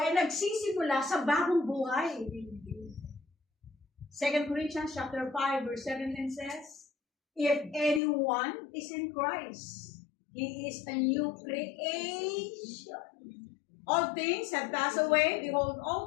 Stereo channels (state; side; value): drops out; right; at 8.0 s